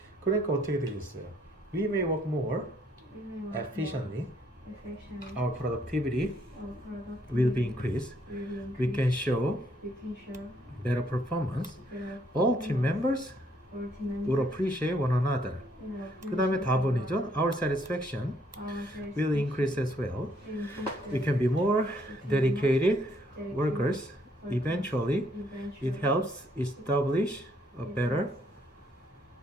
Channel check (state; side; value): normal; both; correlation 0.69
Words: 그러니까 어떻게 되겠어요? We may work more efficiently. Our productivity will be increased. We can show better performance. All team members will appreciate one another. 그 다음에 답은이죠. Our satisfaction will increase as well. We can be more dedicated workers. Eventually, it helps establish a better